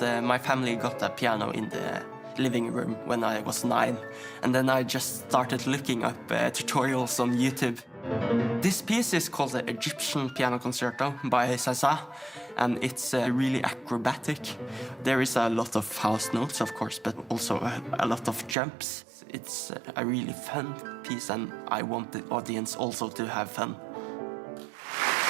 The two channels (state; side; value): drops out; left; at 18.6 s